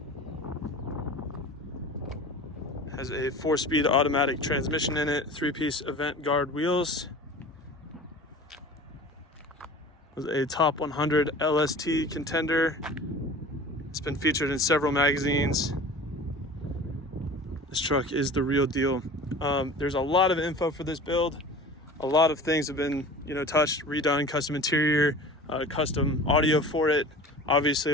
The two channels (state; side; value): normal; both; correlation 0.39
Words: Has a 4-speed automatic transmission in it, 3-piece event guard wheels. With a top 100 LST contender. It's been featured in several magazines. This truck is the real deal. There's a lot of info for this build. A lot of things have been, touched, redone, custom interior, custom audio for it. Obviously